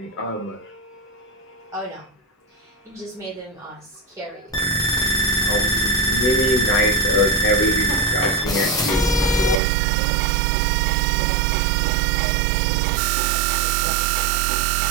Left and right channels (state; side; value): drops out; left; at 9.6 s